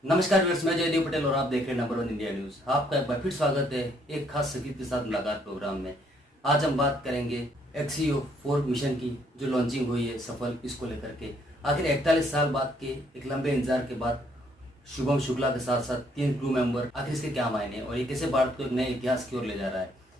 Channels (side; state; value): both; normal; correlation 0.68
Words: नमस्कार व्यूअर्स, मैं जयदेव पटेल और आप देख रहे हैं नंबर 1 इंडिया न्यूज। आपका एक बार फिर स्वागत है एक खास शख्सियत के साथ मुलाकात प्रोग्राम में। आज हम बात करेंगे एक्सियो 4 मिशन की जो लॉन्चिंग हुई है सफल, इसको लेकर के आखिर 41 साल बाद के एक लंबे इंतजार के बाद शुभम शुक्ला के साथ साथ 3 क्रू मेंबर, आखिर इसके क्या मायने और ये कैसे भारत को एक नए इतिहास की ओर ले जा रहा है।